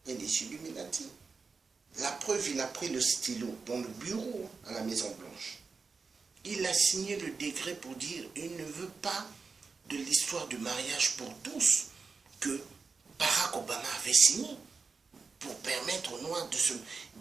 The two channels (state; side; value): quieter; left; 4.7 dB